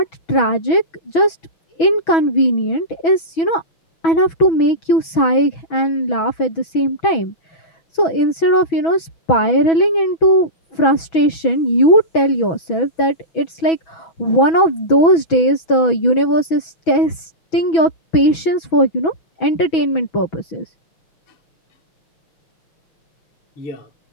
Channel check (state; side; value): late; right; 6.1 ms